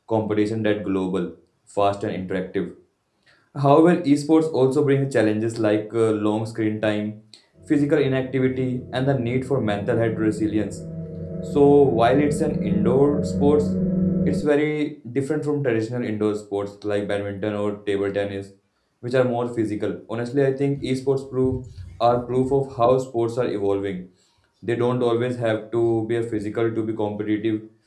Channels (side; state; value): both; identical; correlation 1.00